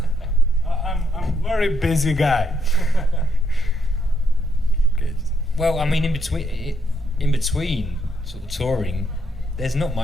I'm a very busy guy. Okay. Well, I mean, in between sort of touring, there's not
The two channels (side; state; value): both; normal; correlation 0.74